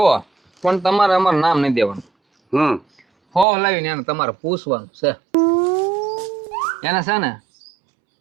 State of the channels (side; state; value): left; drops out; at 3.5 s